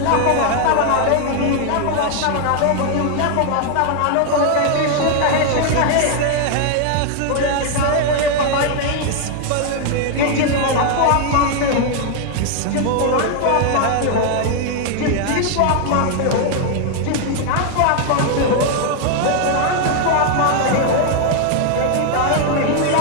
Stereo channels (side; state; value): both; different; correlation 0.00